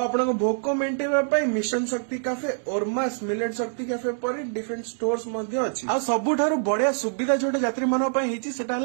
भोक मेन्टेन मिशन शक्ति कैफे ओरमास मिलेट शक्ति कैफे पर डिफरेंट स्टोर्स अच्छी आ सबुठार बढ़िया सुविधा जो यात्री मानक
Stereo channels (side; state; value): left; silent; digital silence